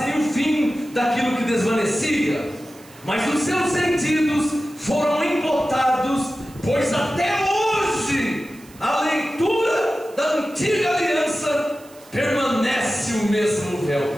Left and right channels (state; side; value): noise; right; hiss, 24 dB below the sound